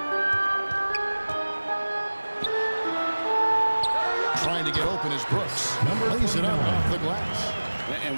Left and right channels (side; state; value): both; inverted; correlation -1.00